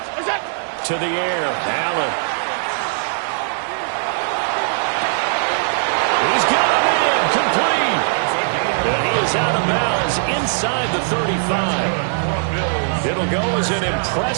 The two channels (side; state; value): left; silent; 60 dB below the other